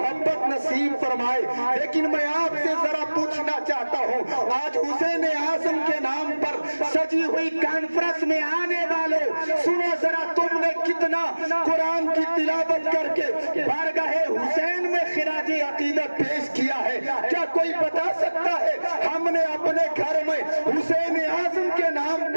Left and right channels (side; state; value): both; inverted; correlation -1.00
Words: نصیب فرمائے۔ لیکن میں آپ سے ذرا پوچھنا چاہتا ہوں، آج حسین اعظم کے نام پر سجی ہوئی کانفرنس میں آنے والوں، سنو ذرا تم نے کتنا قرآن کی تلاوت کر کے بارگاہ حسین میں خراج عقیدت پیش کیا ہے؟ کیا کوئی بتا سکتا ہے ہم نے اپنے گھر میں حسین اعظم کے نام